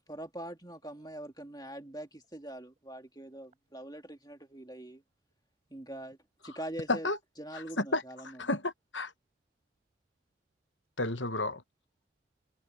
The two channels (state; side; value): normal; both; correlation -0.02